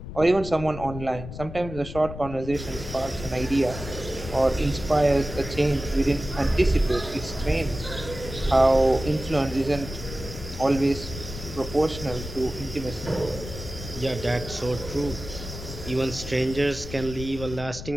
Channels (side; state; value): left; noise; rumble, 10 dB below the sound